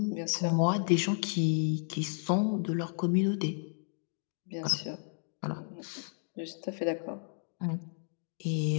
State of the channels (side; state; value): right; silent; 56 dB below the other